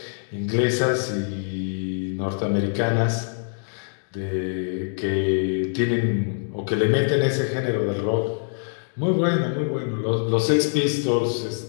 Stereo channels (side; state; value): right; silent; digital silence